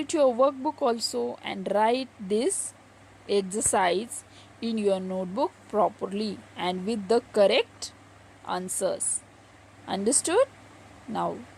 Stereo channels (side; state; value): both; identical; correlation 1.00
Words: your workbook also and write this exercise in your notebook properly and with the correct answers. Understood? Now,